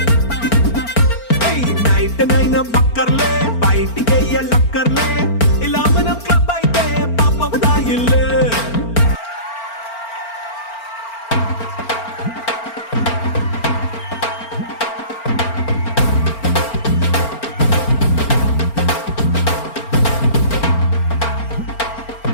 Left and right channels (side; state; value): right; late; 4.4 ms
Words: నైట్ నైన్ బక్కర్లే బయటికి వెయ్యలక్కర్లే ఇలా మనం క్లబ్ అయితే పాప దాయిల్లే